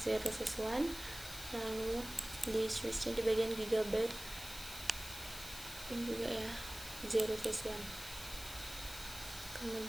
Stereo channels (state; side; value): noise; left; hiss, 11 dB below the sound